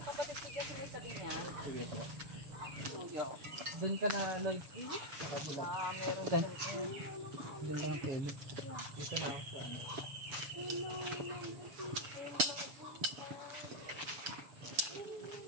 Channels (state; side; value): late; left; 7.1 ms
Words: kapatid ko dyan may sabi niya. Sige po. Doon ka na Lloyd. Sa kabila. Doon ka na Kelly. Dito na ako sa